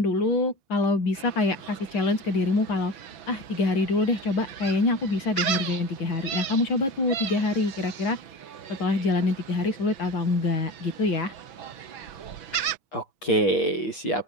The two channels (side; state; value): right; late; 6.1 ms